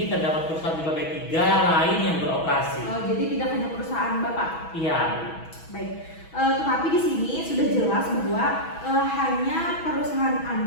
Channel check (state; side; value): late; right; 6.1 ms